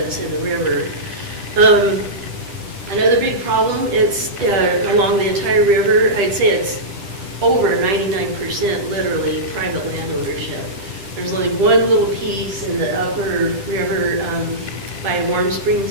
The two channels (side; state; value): left; late; 9.9 ms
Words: in the river. Another big problem, it's along the entire river. I'd say it's over 99% literally private land ownership. There's only one little piece in the upper river by Warm